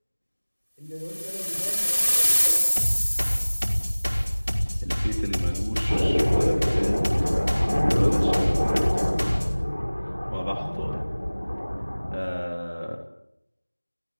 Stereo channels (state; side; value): inverted; both; correlation -1.00